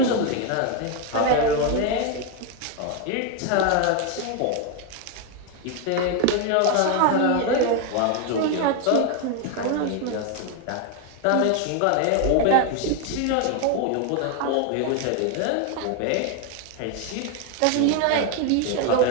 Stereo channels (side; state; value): both; different; correlation 0.01